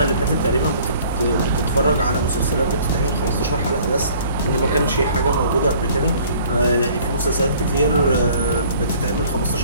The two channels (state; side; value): inverted; both; correlation -0.54